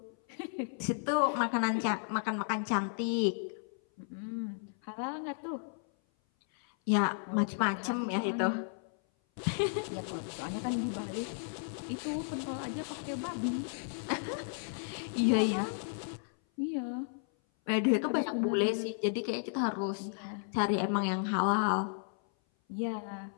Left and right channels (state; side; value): silent; right; 55 dB below the other